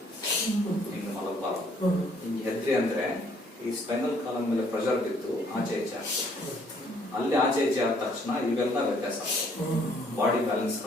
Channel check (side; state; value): both; normal; correlation 0.64